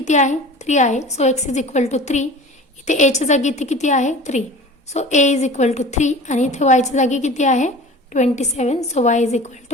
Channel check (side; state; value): both; normal; correlation 0.39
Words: आहे 3 आहे, so x is equal to 3. इथे एच्या जागी इथे किती आहे 3, so a is equal to 3. आणि इथे yच्या जागी किती आहे 27, so y is equal